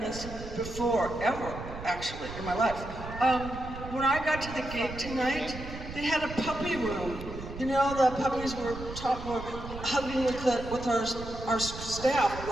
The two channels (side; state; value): right; noise; rumble, 10 dB below the sound